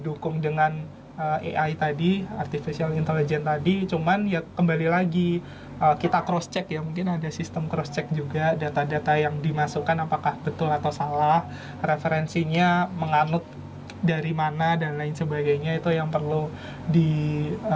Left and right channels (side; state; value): both; identical; correlation 1.00